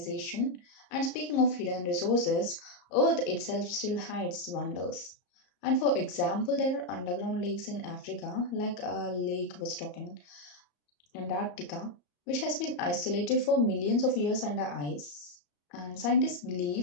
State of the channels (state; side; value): late; right; 34 ms